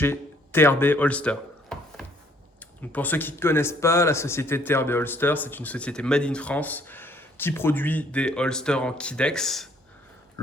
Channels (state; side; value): normal; both; correlation 0.63